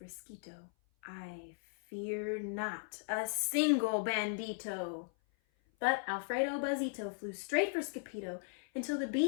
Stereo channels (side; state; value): right; silent; 53 dB below the other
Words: I fear not a single bandito. But Alfredo Buzzito flew straight for Skippyjo until the